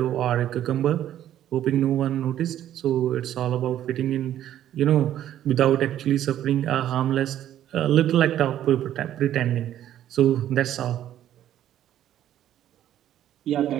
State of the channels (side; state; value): left; quieter; 11.7 dB